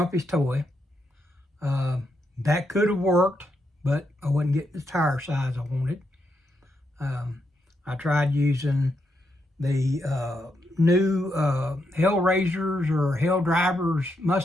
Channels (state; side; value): normal; both; correlation 0.81